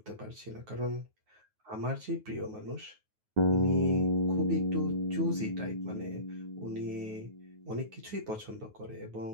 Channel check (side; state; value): left; late; 9.4 ms